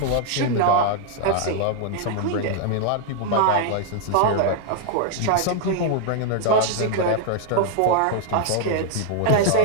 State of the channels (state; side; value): different; both; correlation 0.00